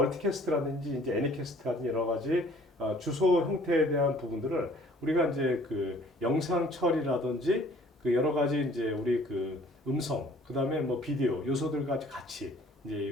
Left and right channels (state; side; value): normal; both; correlation 0.55